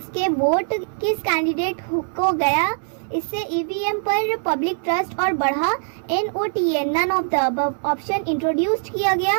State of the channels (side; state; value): left; silent; 64 dB below the other